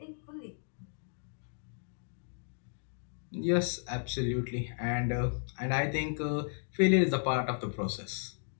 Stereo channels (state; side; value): silent; right; digital silence